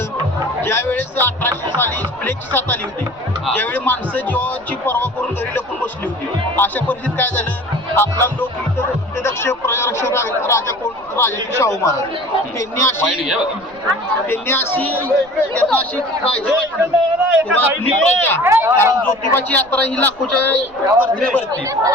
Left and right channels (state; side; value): noise; right; rumble, 27 dB below the sound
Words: ज्यावेळेस 1800 साली प्लेगची साथ आली होती, ज्यावेळी माणसं जीवाची पर्वा करून घरी लपून बसली होती, अशा परिस्थितीत काय झालं, आपला लोक दक्ष प्रजारक्षक राजा कोण, राजा शाहू महाराज, त्यांनी अशी काळजी वाटली प्रजा, कारण ज्योतिबाची यात्रा ही लाखोच्या गर्दीने भरते.